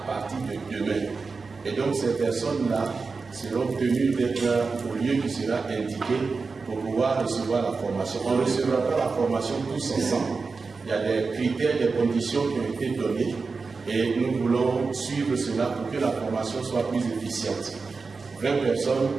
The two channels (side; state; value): left; quieter; 4.4 dB